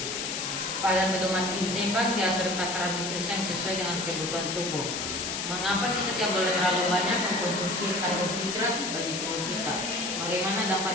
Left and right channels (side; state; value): left; noise; hiss, 3 dB below the sound